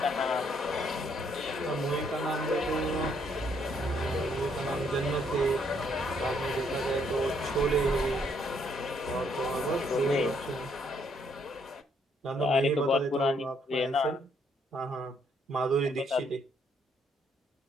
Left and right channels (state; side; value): normal; both; correlation 0.70